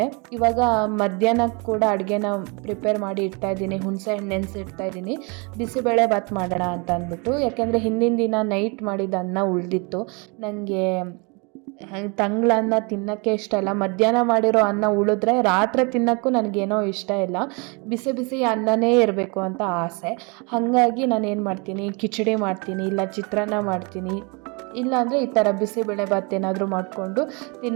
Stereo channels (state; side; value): quieter; left; 30.9 dB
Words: ಇವಾಗ ಮಧ್ಯಾಹ್ನಕ್ಕೆ ಕೂಡ ಅಡುಗೆನ ಪ್ರಿಪೇರ್ ಮಾಡಿ ಇಡ್ತಾ ಇದ್ದೀನಿ. ಹುಣಸೆ ಹಣ್ಣು ನೆನೆಸಿಡ್ತಾ ಇದ್ದೀನಿ, ಬಿಸಿಬೇಳೆ ಬಾತ್ ಮಾಡೋಣ ಅಂತ ಅಂದ್ಬಿಟ್ಟು. ಯಾಕೆಂದರೆ ಹಿಂದಿನ ದಿನ ನೈಟ್ ಮಾಡಿದ ಅನ್ನ ಉಳಿದಿತ್ತು. ನನಗೆ ತಂಗ್ಳನ್ನ ತಿನ್ನೋಕ್ಕೆ ಇಷ್ಟ ಇಲ್ಲ. ಮಧ್ಯಾಹ್ನ ಮಾಡಿರೋ ಅನ್ನ ಉಳಿದ್ರೆ ರಾತ್ರಿ ತಿನ್ನೋಕ್ಕೂ ನನಗೇನೋ ಇಷ್ಟ ಇಲ್ಲ. ಬಿಸಿ ಬಿಸಿ ಅನ್ನನೇ ಇರಬೇಕು ಅಂತ ಆಸೆ. ಹಾಗಾಗಿ ನಾನು ಏನು ಮಾಡ್ತೀನಿ, ಕಿಚಡಿ ಮಾಡ್ತೀನಿ, ಇಲ್ಲ ಚಿತ್ರಾನ್ನ ಮಾಡ್ತೀನಿ, ಇಲ್ಲಾಂದರೆ ಈ ಥರ ಬಿಸಿಬೇಳೆ ಬಾತ್ ಏನಾದರೂ ಮಾಡಿಕೊಂಡು